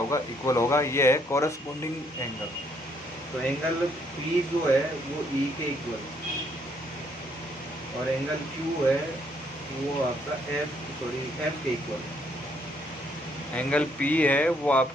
इक्वल होगा। ये है कॉरस्पॉन्डिंग एंगल। तो एंगल P जो है वो E के इक्वल और एंगल Q है वो आपका F के इक्वल। एंगल P है वो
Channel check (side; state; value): both; normal; correlation 0.69